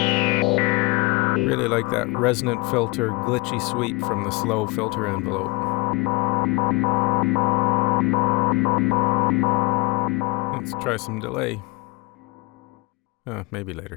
Really like that resonant filter glitchy sweep from the slow filter envelope. Let's try some delay. Maybe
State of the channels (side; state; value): right; quieter; 25.0 dB